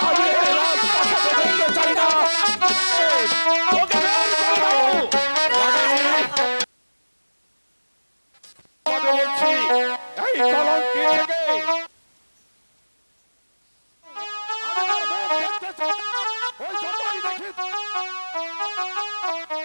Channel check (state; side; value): inverted; both; correlation -1.00